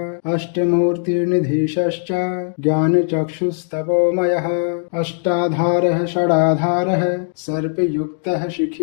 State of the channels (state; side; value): silent; right; 67 dB below the other